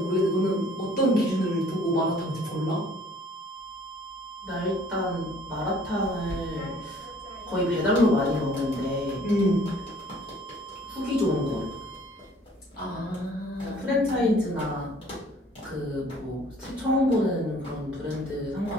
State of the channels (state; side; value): normal; both; correlation 0.56